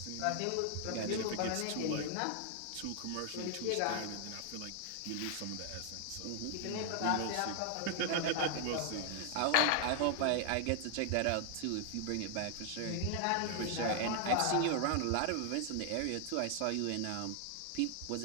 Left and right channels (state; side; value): different; both; correlation 0.00